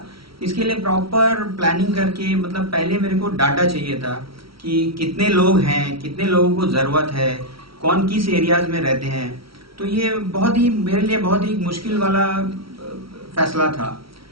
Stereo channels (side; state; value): left; late; 0.75 ms